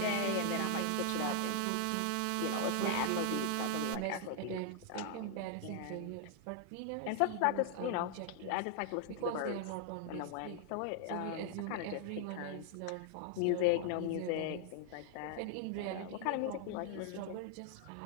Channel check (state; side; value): different; both; correlation 0.00